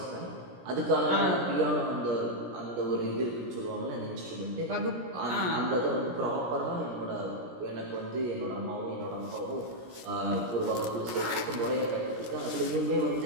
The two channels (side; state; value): left; late; 17 ms